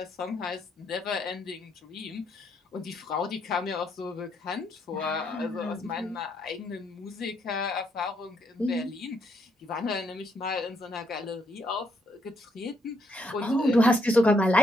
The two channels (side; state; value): both; normal; correlation 0.74